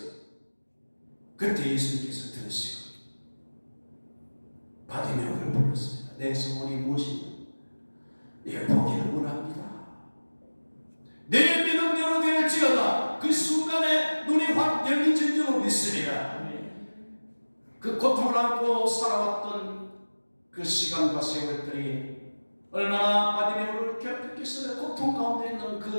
그때 예수님께서 들으시고 바디메오를 불렀습니다. 내 소원이 무엇이냐? 내 보기를 원합니다. 내 믿음대로 될지어다. 그 순간에 눈이 확 열린 줄로 믿습니다. 그 고통을 안고 살아왔던 그 시간과 세월들이 얼마나 바디메오를 괴롭혔겠어요. 고통 가운데 있는 그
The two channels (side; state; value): both; inverted; correlation -1.00